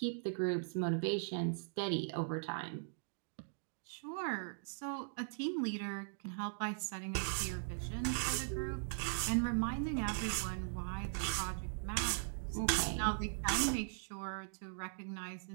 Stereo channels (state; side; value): silent; left; digital silence